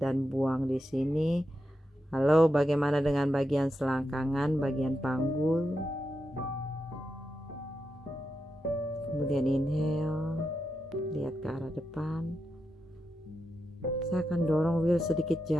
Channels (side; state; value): both; normal; correlation 0.87